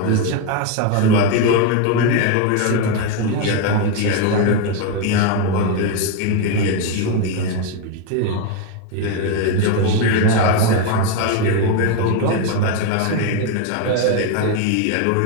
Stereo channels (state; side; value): different; both; correlation 0.02